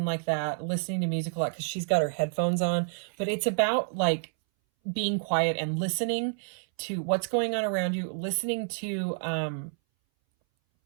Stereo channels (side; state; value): left; silent; 59 dB below the other